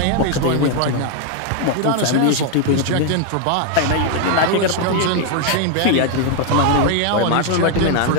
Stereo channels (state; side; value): different; both; correlation 0.01